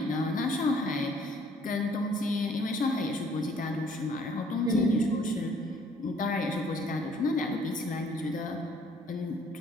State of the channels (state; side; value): normal; both; correlation 0.60